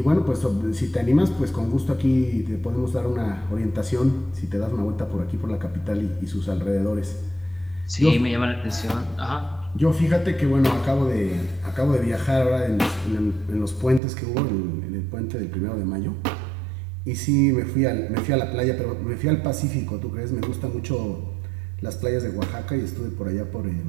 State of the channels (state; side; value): drops out; left; at 14.0 s